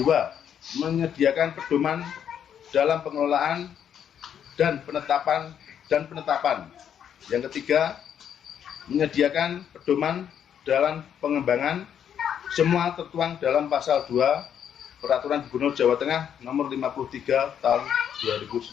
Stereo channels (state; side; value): quieter; right; 8.8 dB